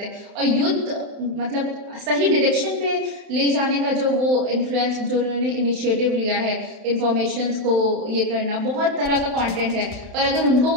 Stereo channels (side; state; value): left; late; 31 ms